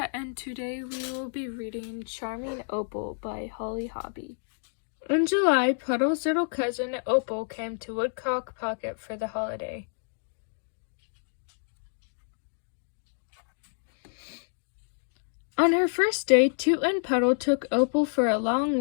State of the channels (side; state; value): right; silent; digital silence